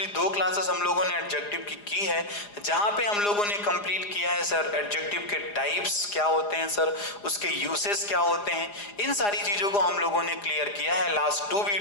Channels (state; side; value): late; right; 4.9 ms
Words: दो क्लासेस हम लोगों ने एडजेक्टिव की है, जहां पे हम लोगों ने कंप्लीट किया है सर एडजेक्टिव के टाइप्स क्या होते हैं सर, उसके यूसेस क्या होते हैं, इन सारी चीजों को हम लोगों ने क्लियर किया है लास्ट 2